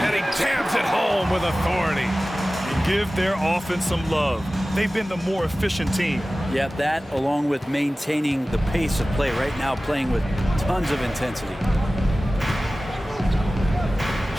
he jams it home with authority. Give their offense some love. They've been the more efficient team. Yeah, that along with maintaining the pace of play right now, playing with tons of intensity.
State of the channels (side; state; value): both; normal; correlation 0.96